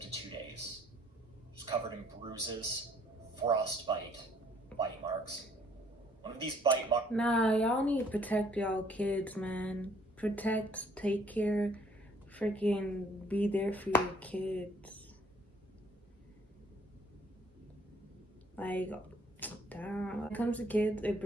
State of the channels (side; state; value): both; normal; correlation 0.61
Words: to 2 days. She was covered in bruises, frostbite, bite marks. One of these bite marks. Nah, y'all need to protect y'all kids, man. Protect, take care, freaking be there for your kids. Like, damn. When it comes to kids, it